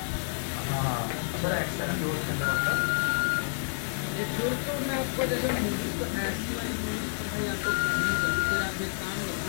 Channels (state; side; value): silent; right; digital silence